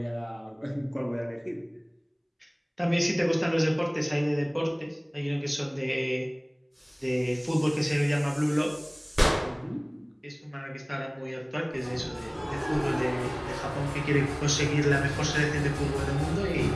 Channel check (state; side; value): identical; both; correlation 1.00